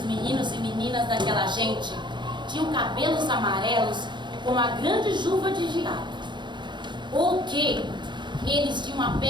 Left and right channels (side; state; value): left; late; 0.22 ms